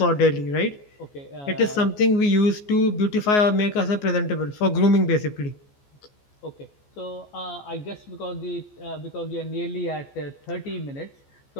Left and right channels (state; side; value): late; right; 14 ms